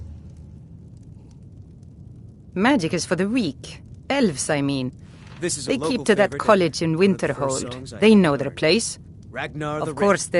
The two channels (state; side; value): identical; both; correlation 1.00